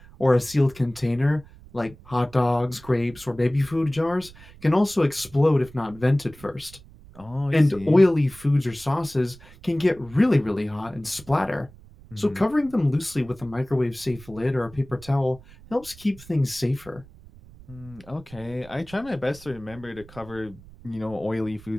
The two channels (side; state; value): right; noise; rumble, 21 dB below the sound